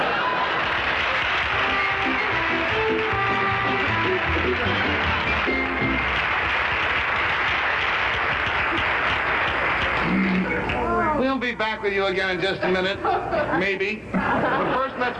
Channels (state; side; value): identical; both; correlation 1.00